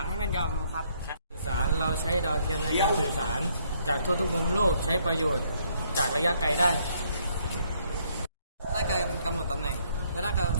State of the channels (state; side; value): inverted; both; correlation -0.69